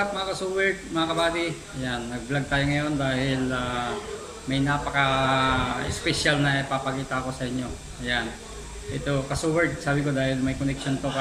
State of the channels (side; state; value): both; identical; correlation 1.00